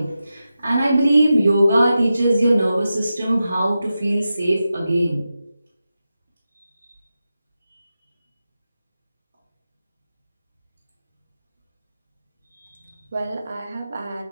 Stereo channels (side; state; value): both; inverted; correlation -0.91